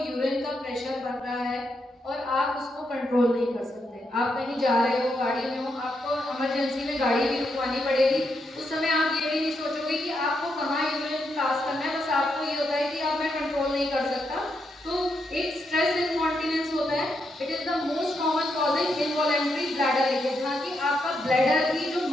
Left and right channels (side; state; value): both; normal; correlation 0.81